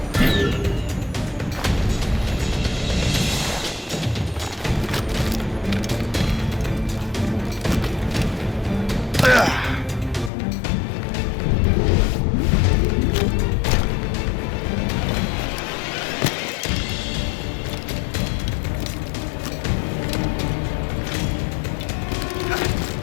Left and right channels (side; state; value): right; drops out; at 10.3 s